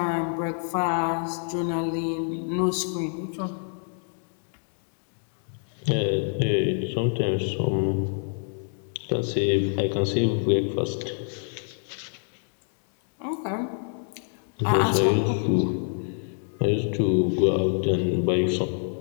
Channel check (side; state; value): right; silent; 60 dB below the other